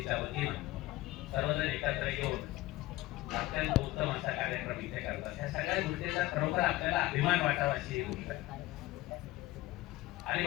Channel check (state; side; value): quieter; right; 18.2 dB